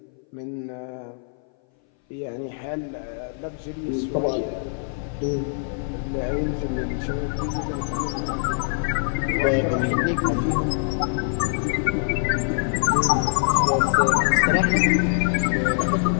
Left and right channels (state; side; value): silent; right; 59 dB below the other